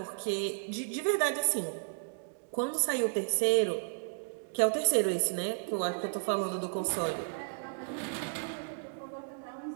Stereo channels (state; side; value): silent; left; digital silence